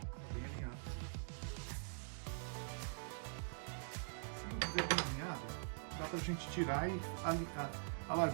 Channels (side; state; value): left; silent; digital silence